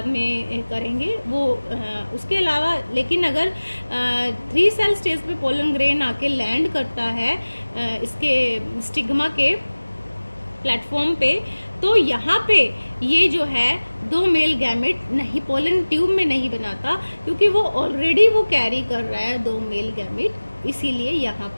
में करेंगे वो। उसके अलावा लेकिन अगर 3 सेल स्टेज पे पोलन ग्रेन आके लैंड करता है इसके स्टिग्मा के प्लेटफॉर्म पे, तो यहाँ पे ये जो है 2 मेल गैमेट नहीं, पोलन ट्यूब में नहीं बनाता, क्योंकि वो ऑलरेडी वो कैरी कर रहा है 2 मेल गैमेट, इसीलिए यहाँ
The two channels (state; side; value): inverted; both; correlation -1.00